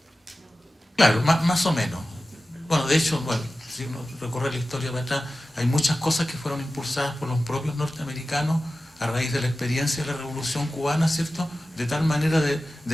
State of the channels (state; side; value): normal; both; correlation 0.95